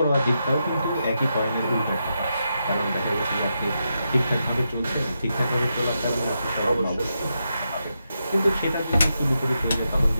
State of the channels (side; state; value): both; inverted; correlation -0.85